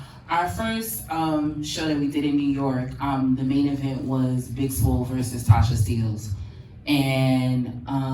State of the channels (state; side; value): identical; both; correlation 1.00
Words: our first show that we did in New York, the main event was Big Swole versus Tasha Steelz, and